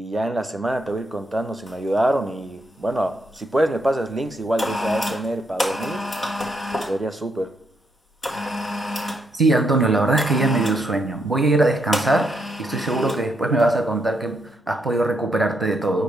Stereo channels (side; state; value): both; normal; correlation 0.77